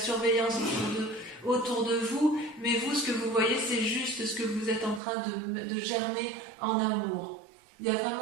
autour de vous, mais vous, ce que vous voyez, c'est juste ce que vous êtes en train de germer en amour. Il y a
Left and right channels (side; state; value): left; drops out; at 5.0 s